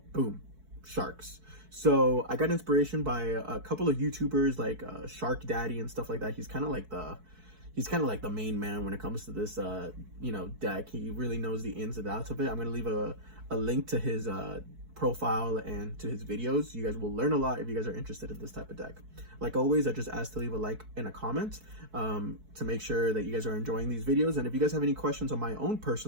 boom, sharks. So I got inspiration by a couple of YouTubers like Shark Daddy and stuff like that. He's kind of like the main man when it comes to this deck. He really knows the ins and outs of it. I'm gonna leave a link to his profile and to his videos. You guys will learn a lot if you guys are interested in this type of deck. Like always, I just ask to leave a like and a comment to make sure that you guys are enjoying these videos. And if you guys have any questions on my own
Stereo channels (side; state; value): left; late; 4.6 ms